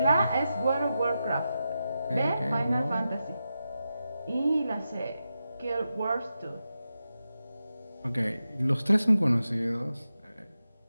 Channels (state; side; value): inverted; both; correlation -0.89